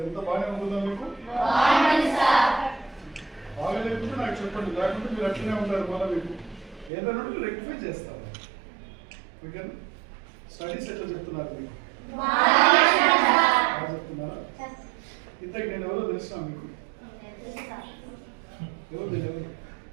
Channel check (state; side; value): drops out; left; at 6.9 s